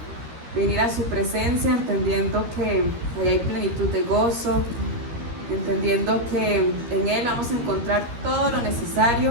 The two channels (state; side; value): late; left; 13 ms